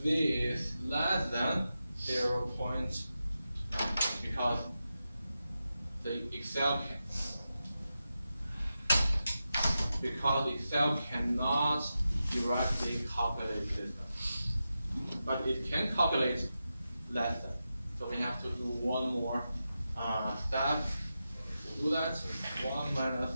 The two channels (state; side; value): inverted; both; correlation -0.90